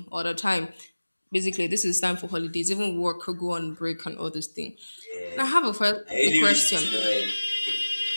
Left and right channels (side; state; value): both; inverted; correlation -1.00